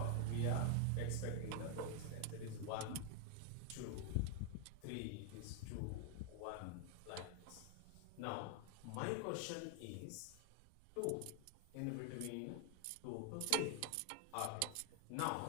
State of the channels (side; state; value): both; different; correlation 0.00